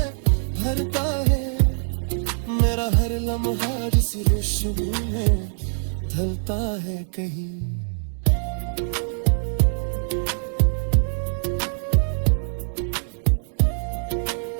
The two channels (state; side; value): silent; left; digital silence